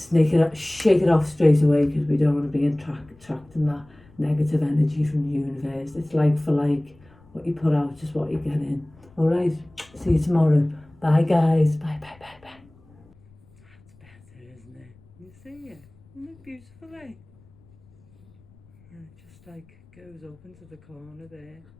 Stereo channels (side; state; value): left; noise; rumble, 28 dB below the sound